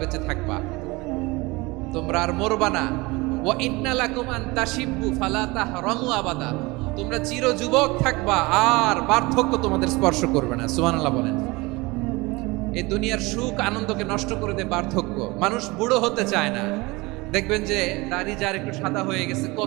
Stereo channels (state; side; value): quieter; left; 23.5 dB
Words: বেঁচে থাকবা, তোমরা আর মরবা না। ওয়া ইন্না লাকুম আন তাশিব্বু ফালা তাহরামু আবাদা, তোমরা চির যুবক থাকবা, আর বার্ধক্য তোমাদের স্পর্শ করবে না। সুবহানাল্লাহ বলেন। এই দুনিয়ার সুখ আনন্দকে নষ্ট করে দেয় বার্ধক্য। মানুষ বুড়ো হতে চায় না। দেখবেন যে দাড়ি যার একটু সাদা হয়ে গেছে